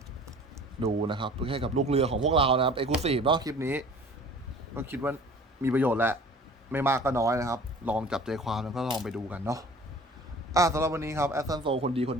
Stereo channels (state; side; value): normal; both; correlation 0.46